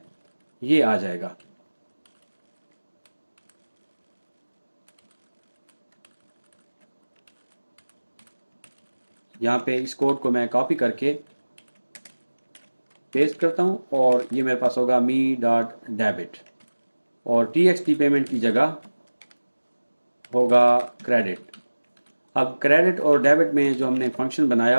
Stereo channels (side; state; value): both; inverted; correlation -1.00